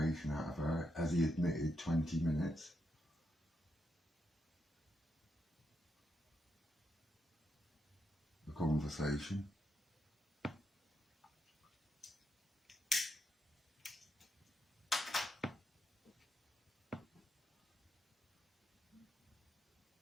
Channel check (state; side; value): normal; both; correlation 0.82